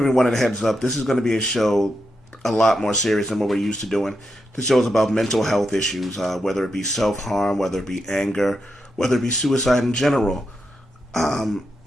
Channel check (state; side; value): normal; both; correlation 0.85